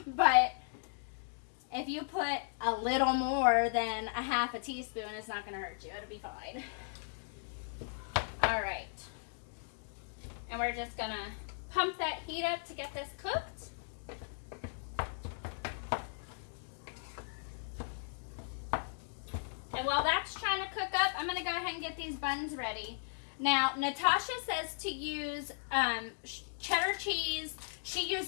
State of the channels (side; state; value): right; silent; digital silence